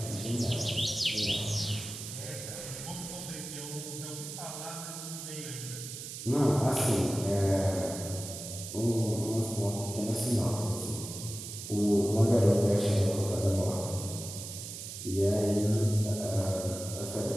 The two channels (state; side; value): noise; right; hiss, 9 dB below the sound